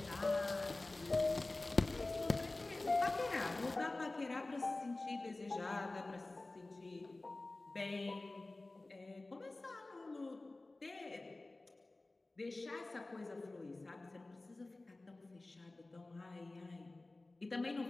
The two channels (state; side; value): quieter; right; 3.0 dB